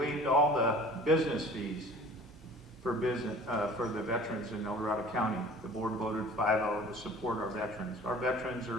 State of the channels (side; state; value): both; normal; correlation 0.46